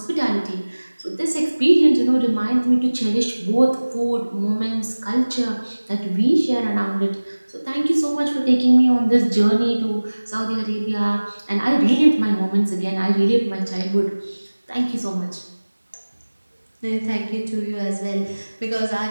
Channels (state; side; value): inverted; both; correlation -1.00